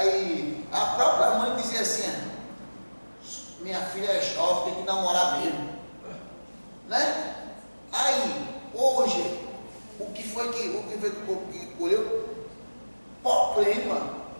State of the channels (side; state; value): both; inverted; correlation -1.00